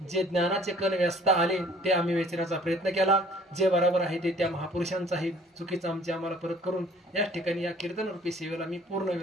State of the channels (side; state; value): both; normal; correlation 0.54